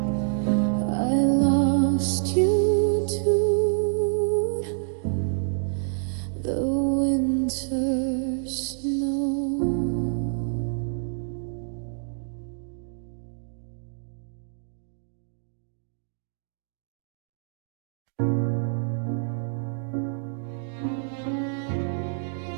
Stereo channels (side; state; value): left; silent; digital silence